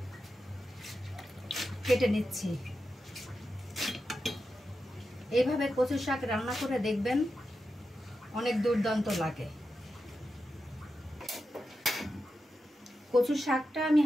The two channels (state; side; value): normal; both; correlation 0.89